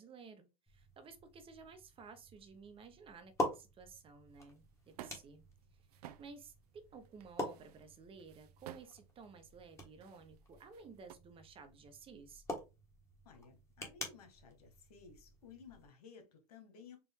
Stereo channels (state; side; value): normal; both; correlation 0.45